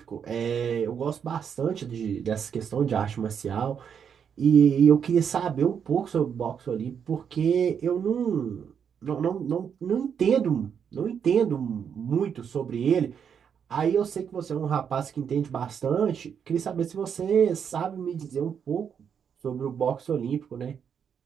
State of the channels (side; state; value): left; quieter; 7.5 dB